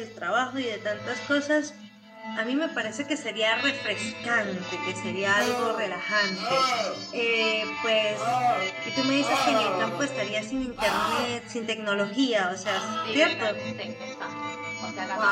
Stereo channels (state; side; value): identical; both; correlation 1.00